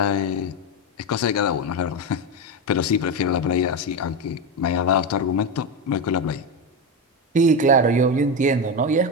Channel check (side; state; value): both; normal; correlation 0.13